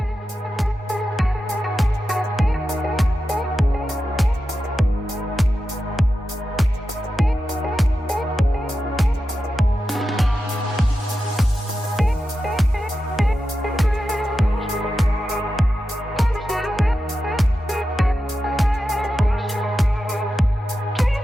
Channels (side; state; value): both; normal; correlation 0.90